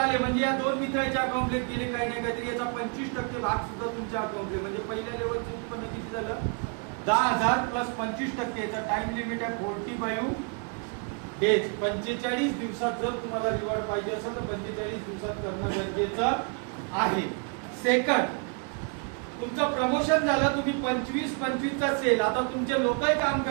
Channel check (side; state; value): left; quieter; 38.1 dB